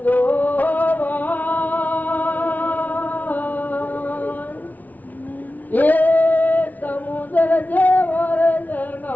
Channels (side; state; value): right; late; 0.077 ms